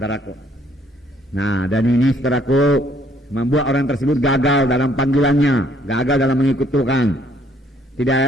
Nah, dan ini, saudaraku, membuat orang tersebut gagal dalam panggilannya, gagal dalam mengikut Tuhan. Tidak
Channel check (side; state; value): both; normal; correlation 0.65